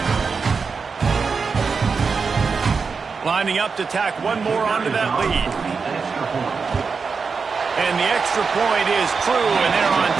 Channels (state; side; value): quieter; left; 5.1 dB